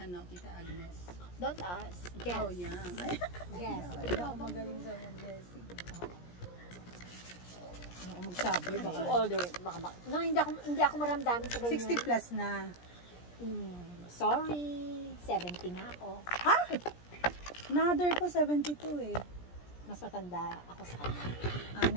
Tita Agnes? Don't ask. Guess. Oh, young. Guess. Hindi ako magaling sa mga guessing. Hindi ako magsabi. Baka too older. No, hindi ako maramdamin sa ganyan. 60 plus na. Sorry. 70 nga ako. Another ko, 72 eh. Mas matanda ako sa kanya.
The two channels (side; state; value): right; late; 17 ms